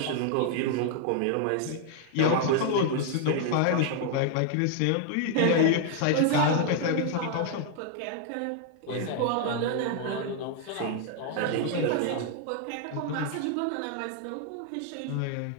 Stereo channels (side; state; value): both; different; correlation 0.00